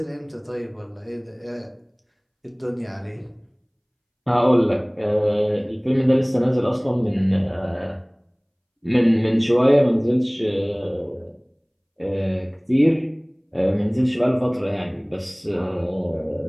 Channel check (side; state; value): both; identical; correlation 1.00